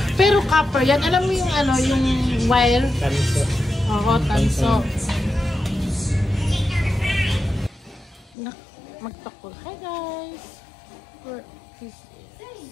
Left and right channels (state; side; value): drops out; right; at 8.3 s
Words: Pero copper yan. Alam mo yung ano, yung wire? Tanso. Oo, tanso. Magtakol. Hi guys! This is